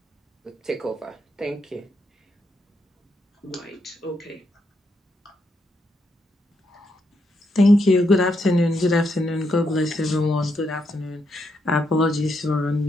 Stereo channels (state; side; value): normal; both; correlation 0.79